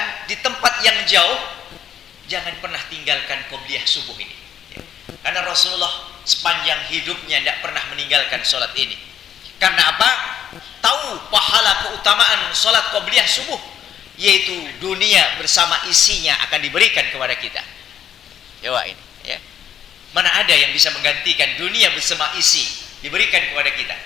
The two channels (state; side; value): quieter; right; 9.5 dB